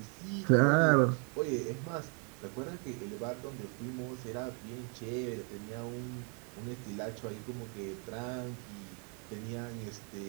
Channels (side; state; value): left; quieter; 37.6 dB